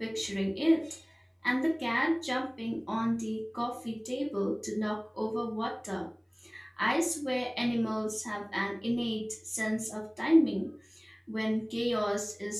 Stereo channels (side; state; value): both; identical; correlation 1.00